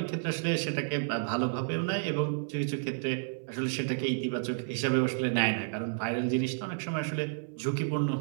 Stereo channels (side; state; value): left; silent; 57 dB below the other